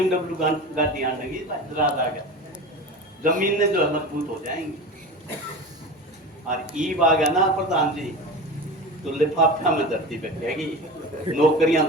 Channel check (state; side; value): normal; both; correlation 0.30